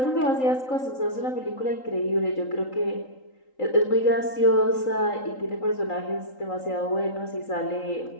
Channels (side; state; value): right; late; 3.8 ms